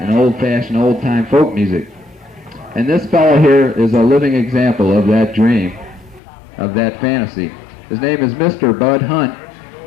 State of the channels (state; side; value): drops out; right; at 6.2 s